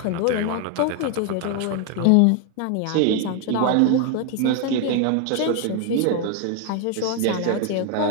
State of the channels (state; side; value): different; both; correlation 0.01